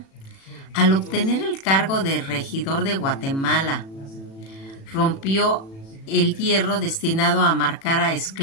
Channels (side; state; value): right; late; 36 ms